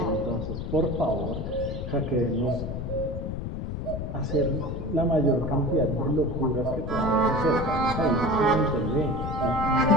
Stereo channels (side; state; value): left; noise; rumble, 4 dB below the sound